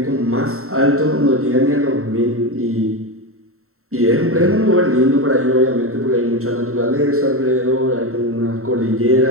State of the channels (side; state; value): left; late; 0.63 ms